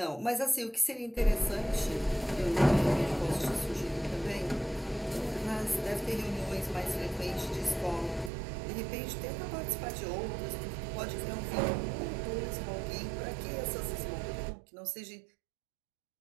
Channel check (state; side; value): drops out; left; at 8.3 s